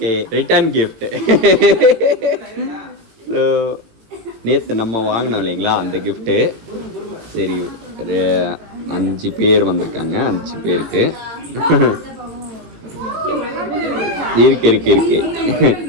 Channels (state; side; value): late; left; 18 ms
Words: return gift. So நேற்று நம்ம வாங்கினோம் இல்லைங்களா அந்த கிஃப்ட்டு. சரி, 5 பேர் வந்திருக்காங்க. 5 பேருக்கு இருக்கு